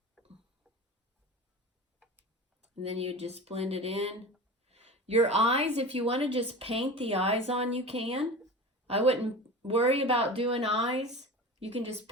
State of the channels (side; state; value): both; normal; correlation 0.32